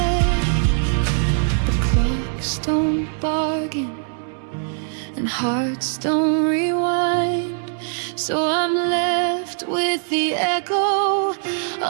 The clocks don't bargain and hearts don't rewind, so I'm left with the echo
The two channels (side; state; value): left; silent; digital silence